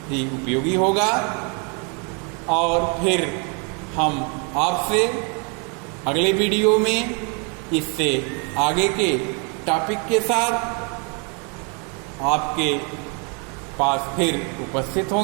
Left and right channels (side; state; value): left; quieter; 35.7 dB